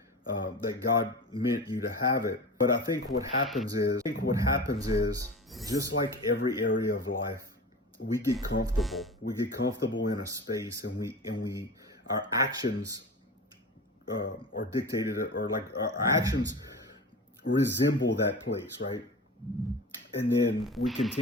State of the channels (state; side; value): normal; both; correlation 0.32